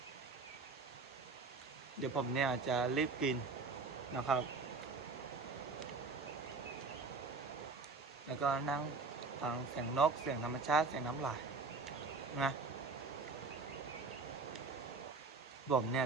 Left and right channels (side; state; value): left; quieter; 4.2 dB